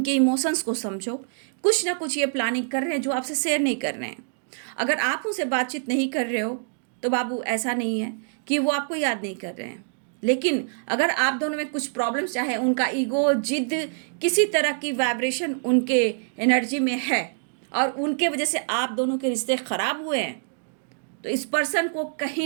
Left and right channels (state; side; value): silent; left; digital silence